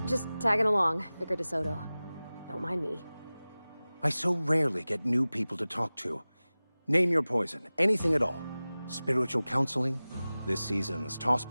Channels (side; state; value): both; inverted; correlation -0.98